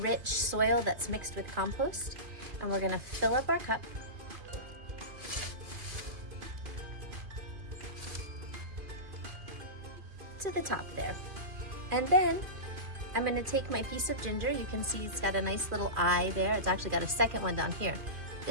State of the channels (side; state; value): left; late; 2.4 ms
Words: soil that's mixed with compost, and we're going to fill up our cup to the top there. And then I'm going to take my piece of ginger. You can see it's got a nice little eye there. It's actually got a second one down here.